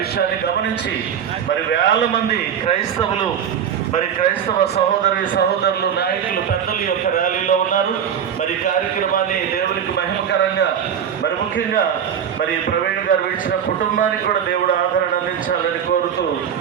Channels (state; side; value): quieter; left; 8.4 dB